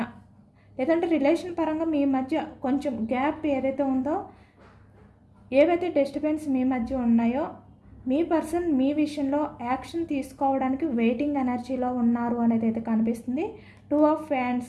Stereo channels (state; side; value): identical; both; correlation 1.00